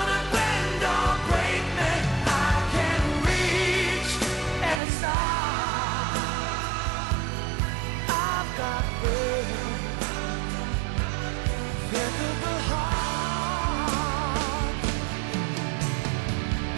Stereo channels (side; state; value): left; drops out; at 4.8 s